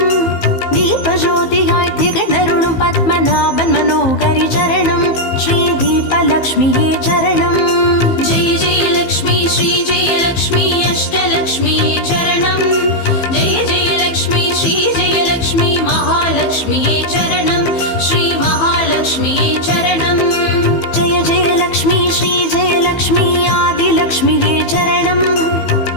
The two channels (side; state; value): right; late; 15 ms